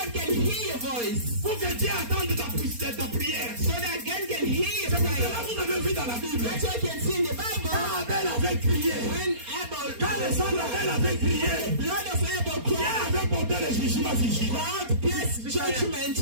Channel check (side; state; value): left; late; 4.3 ms